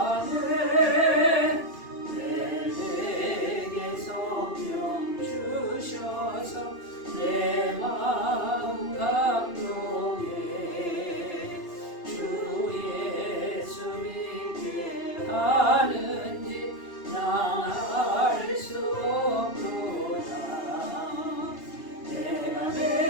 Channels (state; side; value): late; right; 2.8 ms